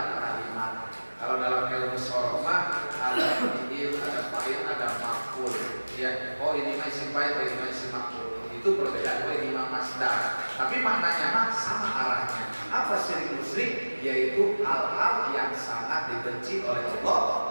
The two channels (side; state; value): both; inverted; correlation -1.00